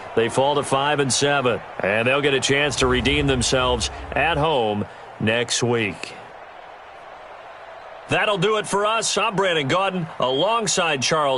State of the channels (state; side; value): identical; both; correlation 1.00